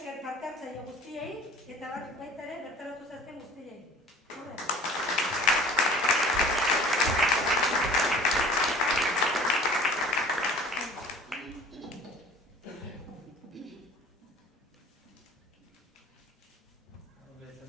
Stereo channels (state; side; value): normal; both; correlation 0.45